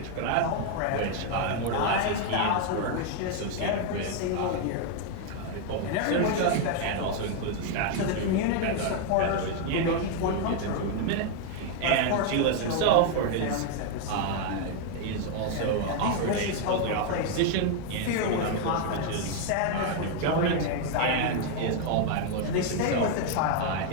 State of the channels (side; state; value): both; different; correlation 0.01